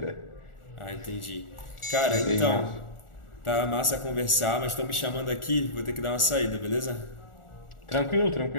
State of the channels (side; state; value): right; late; 1.4 ms